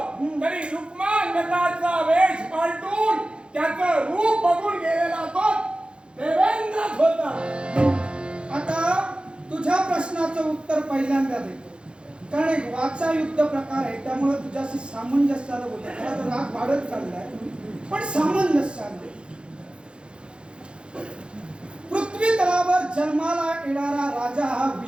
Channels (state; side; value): late; left; 0.055 ms